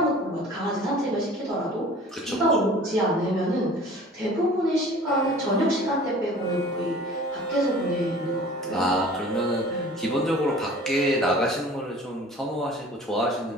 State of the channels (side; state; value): both; normal; correlation 0.45